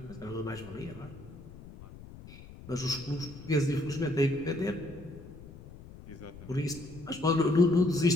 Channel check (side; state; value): left; noise; rumble, 16 dB below the sound